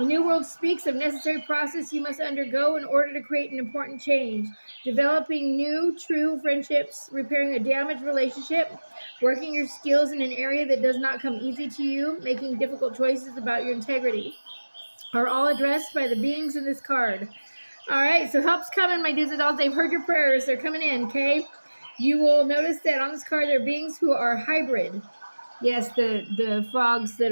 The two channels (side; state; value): both; inverted; correlation -1.00